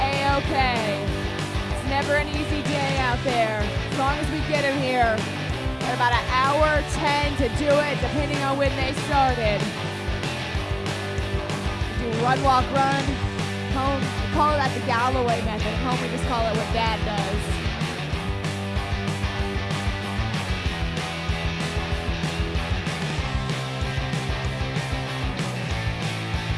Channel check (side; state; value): both; identical; correlation 1.00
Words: It's never an easy day out there. As long as we get them here. Got about an hour 10 to do it, depending on when they started. Run, walk, run. Home, we call that the Galloway method. Home, we just call it what Dad does.